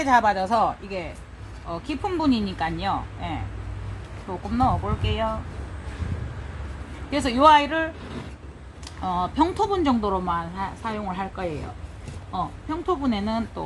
잡아져서 이게 깊은 분이니까요. 예. 조금 넣어 볼게요. 그래서 이 아이를 평토분 정도로만 사용을 할 거예요. 평토분에는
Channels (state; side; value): identical; both; correlation 1.00